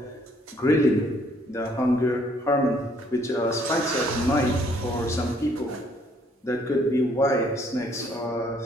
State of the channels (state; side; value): normal; both; correlation 0.65